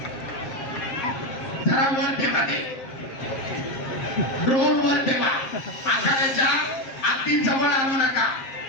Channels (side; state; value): right; late; 7.6 ms